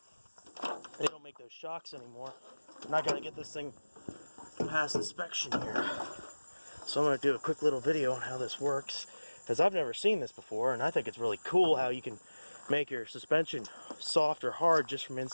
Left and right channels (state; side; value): inverted; both; correlation -1.00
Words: they don't make those shocks anymore. I'm not going to get this thing past inspection here. So I'm going to do a quick little video on how this works, because I've never seen this before, and I think it's really cool how you can make your suspension soft or hard just from